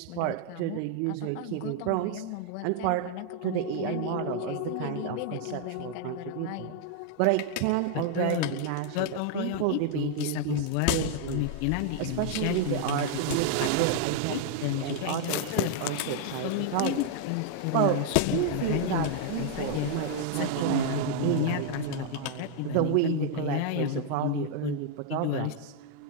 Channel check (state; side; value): different; both; correlation 0.00